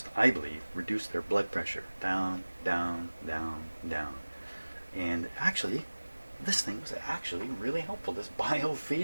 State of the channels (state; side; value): inverted; both; correlation -1.00